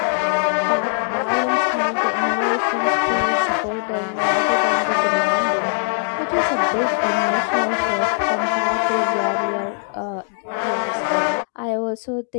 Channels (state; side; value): silent; right; digital silence